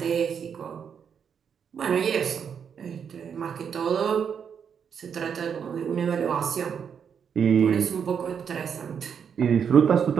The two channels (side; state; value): left; quieter; 7.3 dB